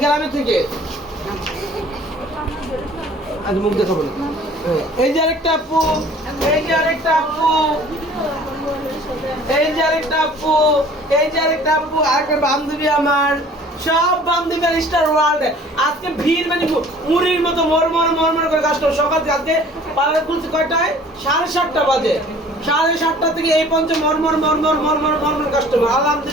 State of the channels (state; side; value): normal; both; correlation 0.51